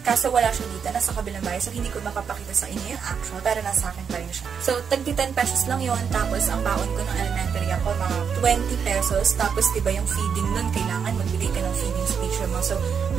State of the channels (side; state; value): left; quieter; 6.8 dB